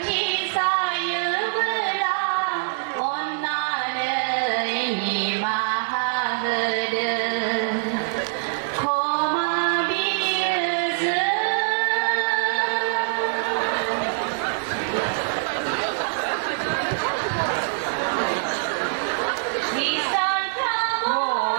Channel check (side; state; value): left; silent; 60 dB below the other